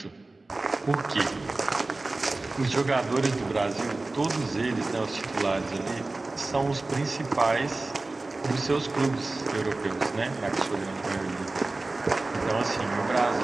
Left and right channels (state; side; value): quieter; left; 3.2 dB